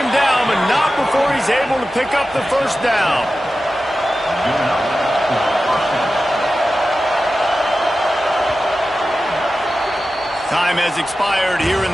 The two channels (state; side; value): normal; both; correlation 0.94